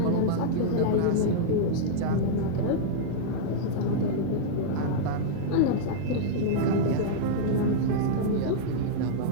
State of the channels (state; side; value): different; both; correlation -0.02